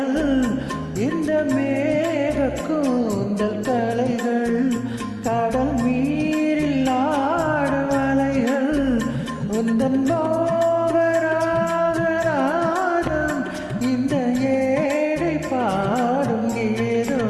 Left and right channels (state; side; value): identical; both; correlation 1.00